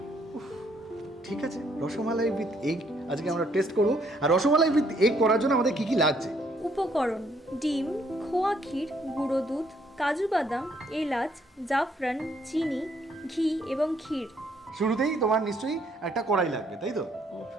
ঠিক আছে, রসমালাই উইথ এগ আজকে আমরা টেস্ট করব। আর রসমালাই উইথ এগ করার জন্য আমাদের কি কি লাগছে? উপকরণ: ডিম, খোয়া ক্ষীর, গুঁড়ো দুধ, কাজু বাদাম, এলাচ, জাফরান, চিনি, ঘি এবং ক্ষীর। শুরুতেই তোমার নিশ্চয়ই একটা কড়াই লাগবে, তাই তো?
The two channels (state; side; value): normal; both; correlation 0.68